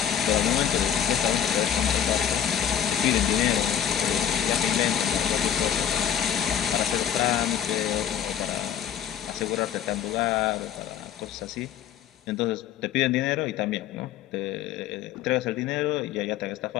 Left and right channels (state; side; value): quieter; right; 9.3 dB